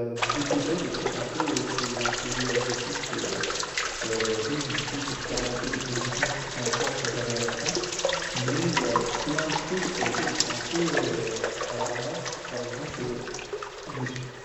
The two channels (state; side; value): identical; both; correlation 1.00